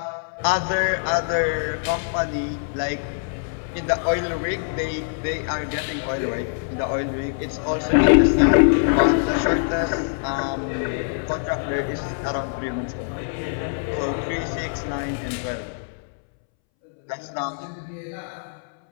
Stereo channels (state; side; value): silent; right; 63 dB below the other